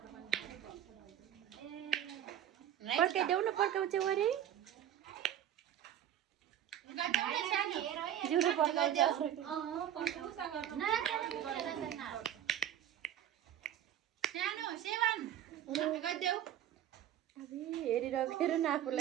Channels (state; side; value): quieter; left; 11.1 dB